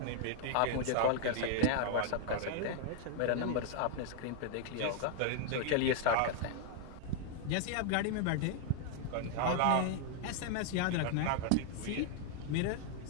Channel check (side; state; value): both; different; correlation 0.00